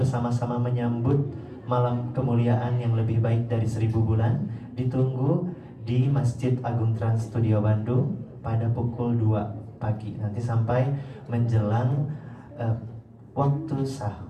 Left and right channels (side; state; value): both; identical; correlation 1.00